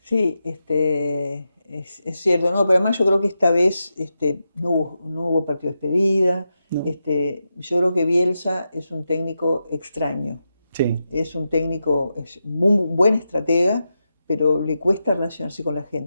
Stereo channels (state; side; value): inverted; both; correlation -0.88